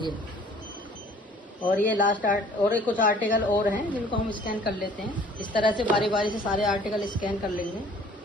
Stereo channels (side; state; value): both; normal; correlation 0.53